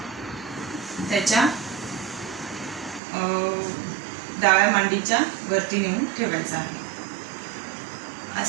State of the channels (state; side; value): drops out; left; at 3.0 s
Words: त्याच्या डाव्या मांडीच्या वरती नेऊन ठेवायचा आहे.